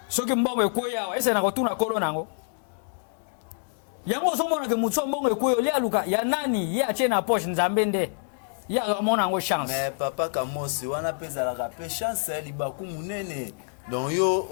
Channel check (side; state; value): right; silent; digital silence